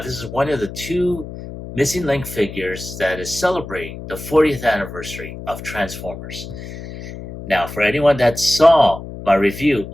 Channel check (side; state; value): left; noise; hum, 11 dB below the sound